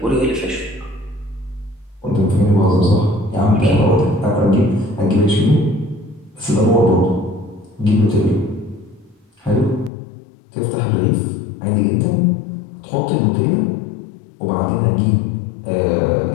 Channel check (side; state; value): right; drops out; at 9.9 s